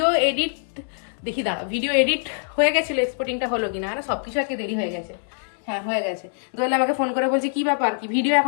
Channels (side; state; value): right; silent; digital silence